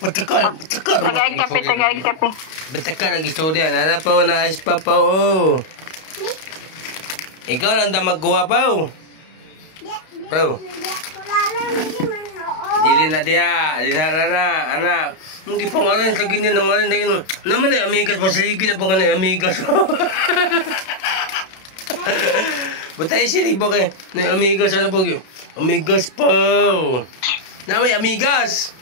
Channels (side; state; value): right; late; 32 ms